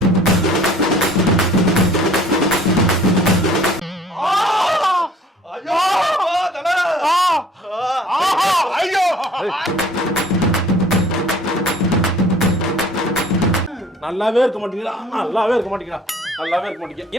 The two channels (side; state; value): both; normal; correlation 0.52